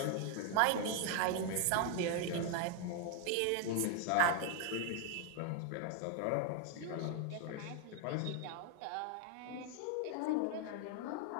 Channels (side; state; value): both; different; correlation 0.01